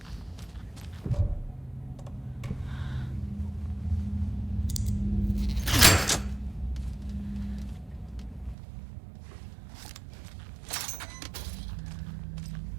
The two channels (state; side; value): drops out; left; at 8.6 s